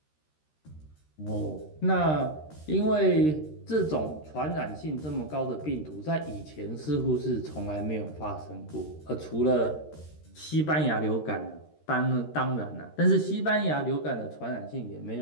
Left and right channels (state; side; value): late; right; 13 ms